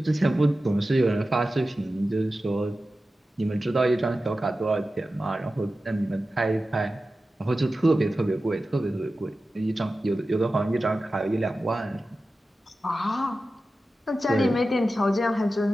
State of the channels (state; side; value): normal; both; correlation 0.94